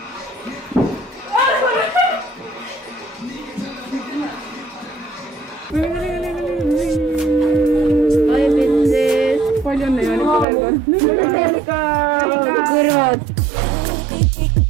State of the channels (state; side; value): drops out; left; at 10.5 s